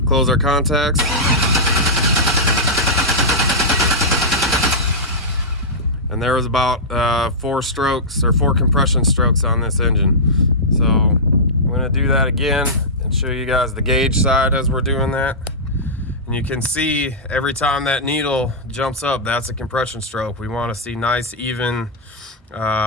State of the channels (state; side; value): normal; both; correlation -0.12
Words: close our contacts, and there was about 4 strokes or 4 compression strokes on this engine. So I'm going to do that again and show you guys the gauge side as we're doing that. And you can see every time that needle jumps up, that's a compression stroke. We want to see nice, even